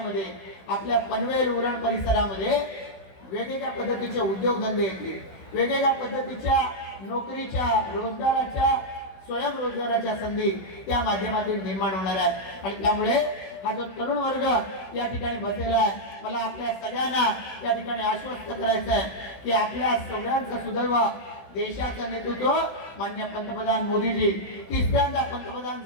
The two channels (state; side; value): late; right; 16 ms